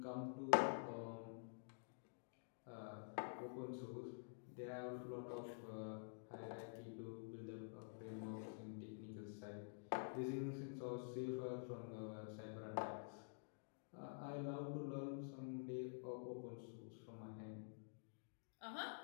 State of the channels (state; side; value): silent; right; digital silence